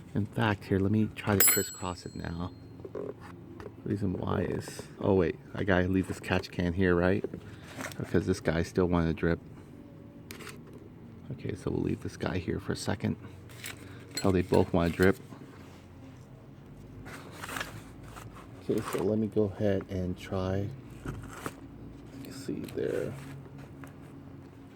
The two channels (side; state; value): both; identical; correlation 1.00